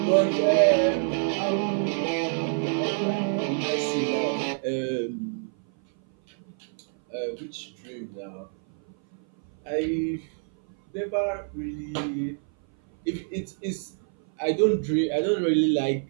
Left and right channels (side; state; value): left; silent; 57 dB below the other